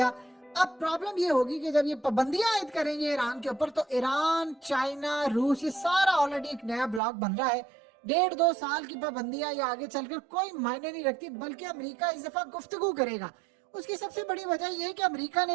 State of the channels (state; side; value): drops out; left; at 7.0 s